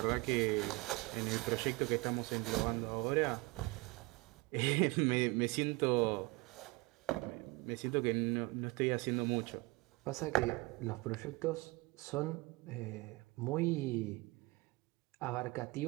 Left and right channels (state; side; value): quieter; left; 23.9 dB